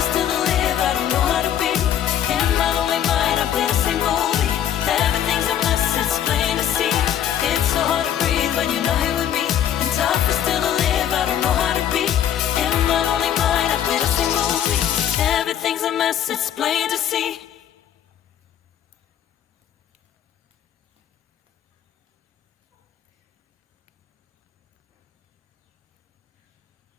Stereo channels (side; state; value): right; quieter; 10.2 dB